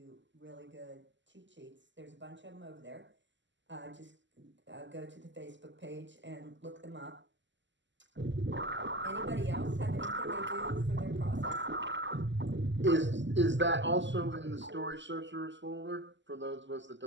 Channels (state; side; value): late; left; 0.54 ms